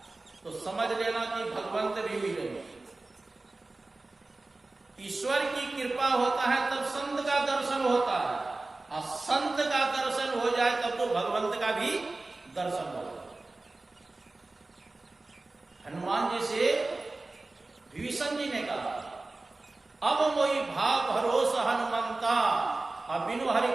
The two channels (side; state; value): left; quieter; 3.2 dB